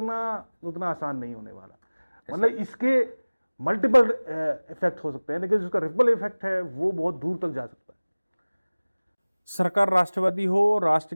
उतना आसान नहीं होने वाला। मतलब इसके मल्टीपल इफेक्ट हो सकते हैं, लेकिन जिसका रिपल इफेक्ट है वो बहुत दूर तक जा सकता है। सरकार राष्ट्रवादी हो, राष्ट्र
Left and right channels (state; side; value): inverted; both; correlation -1.00